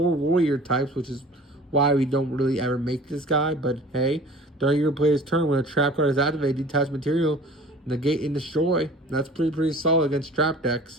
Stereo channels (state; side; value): normal; both; correlation 0.44